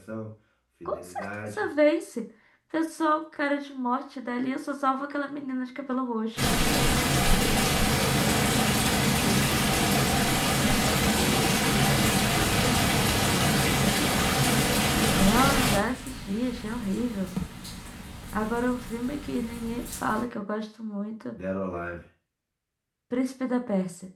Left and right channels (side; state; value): both; identical; correlation 1.00